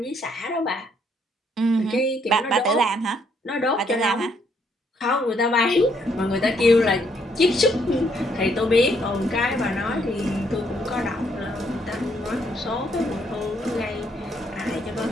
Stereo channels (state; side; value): normal; both; correlation 0.70